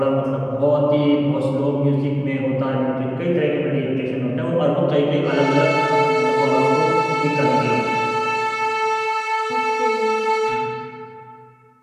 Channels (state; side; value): identical; both; correlation 1.00